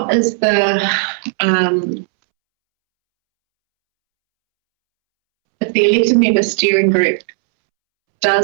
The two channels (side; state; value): left; silent; 70 dB below the other